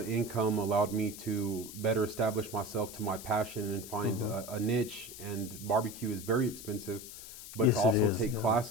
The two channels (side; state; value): left; noise; hiss, 13 dB below the sound